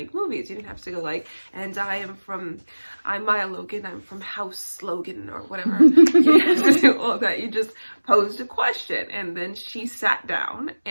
movies. You didn't have to go like, and I'm Maya Logan, I'm from House Logan, or whatever. You didn't have to do all that. You just posed a question, and then she sat down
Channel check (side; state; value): both; inverted; correlation -1.00